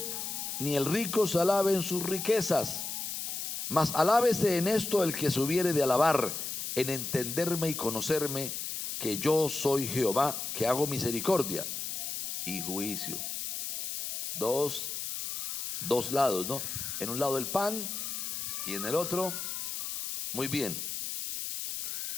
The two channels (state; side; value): noise; left; hiss, 4 dB below the sound